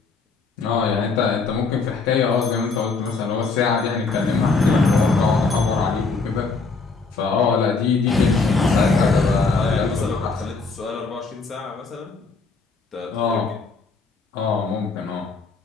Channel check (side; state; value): right; quieter; 4.3 dB